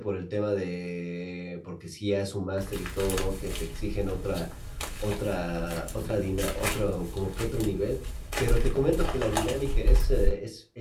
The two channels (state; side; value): identical; both; correlation 1.00